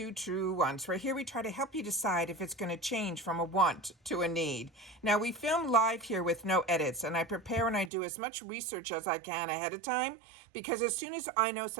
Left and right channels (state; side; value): drops out; left; at 7.9 s